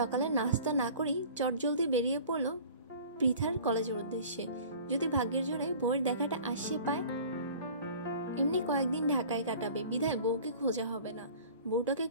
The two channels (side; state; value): both; inverted; correlation -0.45